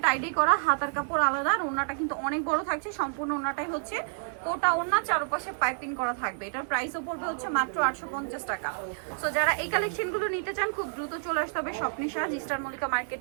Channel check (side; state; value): left; silent; digital silence